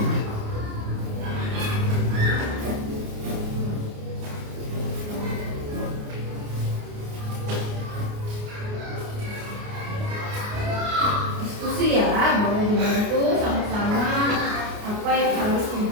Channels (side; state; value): left; late; 29 ms